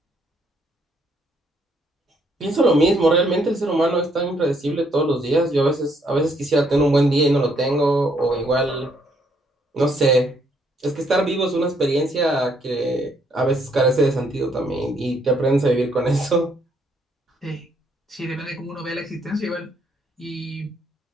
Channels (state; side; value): normal; both; correlation 0.70